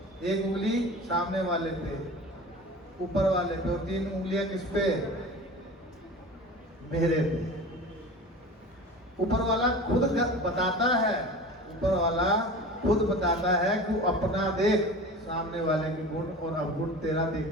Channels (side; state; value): both; normal; correlation 0.36